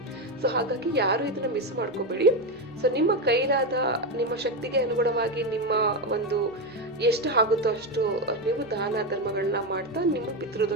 ಸೊ ಹಾಗಾಗಿ ಯಾರು ಇದನ್ನು ಮಿಸ್ ಮಾಡ್ಕೋಬೇಡಿ. ಸೊ ನಿಮ್ಮ ಕೈಲಾದ, ನಿಮ್ಮ ಶಕ್ತಿಗೆ ಅನುಗುಣವಾಗಿ ನಿಮ್ಮ ಒಂದು ಎಷ್ಟು ಆಗುತ್ತೋ ಅಷ್ಟು ನೀವು ದಾನ ಧರ್ಮಗಳನ್ನ ಮಾಡ್ತಾ ನಿಮ್ಮ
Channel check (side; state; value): both; normal; correlation 0.11